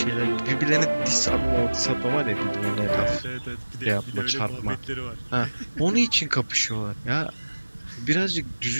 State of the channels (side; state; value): both; inverted; correlation -1.00